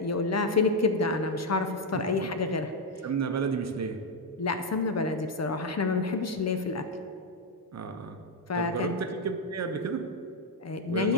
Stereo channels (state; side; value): normal; both; correlation 0.03